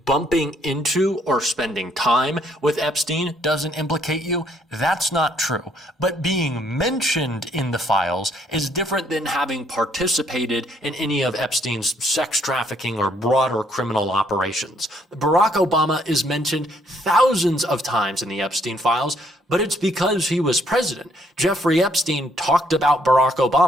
bumping into or spending time with Epstein doesn't implicate you. That's not true. But being mentioned in the files is different than having participated in any of Epstein's sex trafficking or broader criminal operations. Barack Obama is mentioned thousands of times in the Epstein files, but it's because he was president. Jeffrey Epstein talked about Barack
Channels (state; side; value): normal; both; correlation 0.68